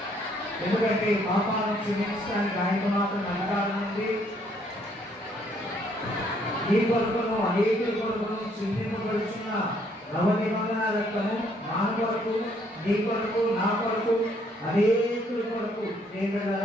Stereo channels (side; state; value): both; normal; correlation 0.67